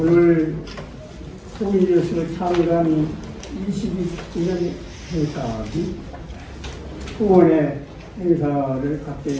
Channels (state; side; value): identical; both; correlation 1.00